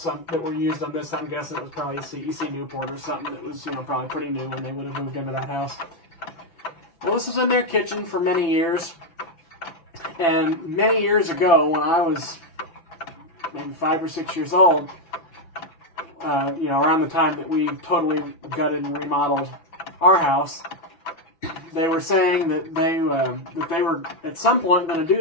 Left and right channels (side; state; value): right; late; 6.0 ms